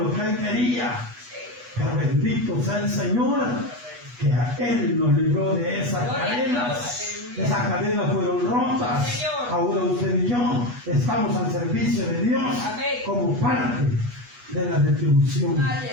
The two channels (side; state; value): left; late; 8.2 ms